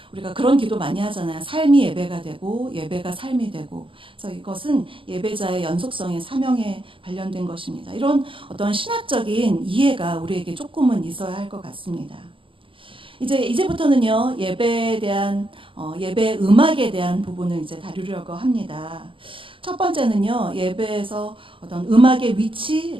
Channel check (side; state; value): left; late; 0.25 ms